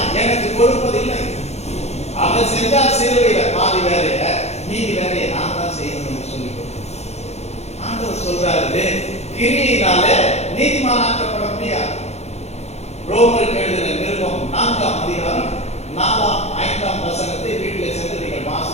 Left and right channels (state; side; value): late; right; 0.31 ms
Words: எனக்கு கொடுப்பதில்லை. அவர் செஞ்சால் சிலுவையில பாதி வேலைய மீதி வேலையை நான் தான் செய்யணும் என்று சொல்லி ஆண்டவர் சொல்றாரு, கிரியினால நீதிமானாக்கப்பட முடியாது. ரோமருக்கு எழுதின நிருபம் 4ஆம் அதிகாரம் 4ஆம் 5ஆம் வசனத்தை வீட்டில் சென்று நீங்கள்